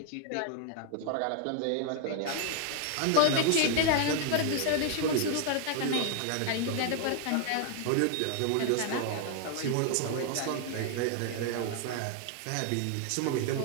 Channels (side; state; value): both; different; correlation 0.00